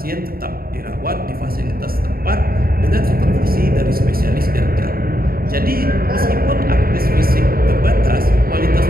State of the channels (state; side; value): late; left; 0.43 ms